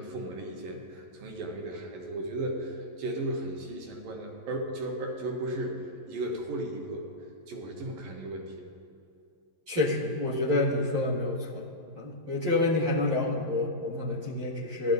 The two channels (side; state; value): left; late; 11 ms